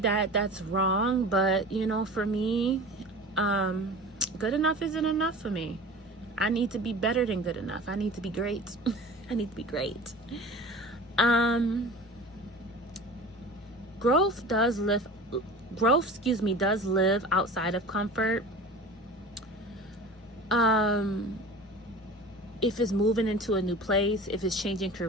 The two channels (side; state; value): both; normal; correlation 0.37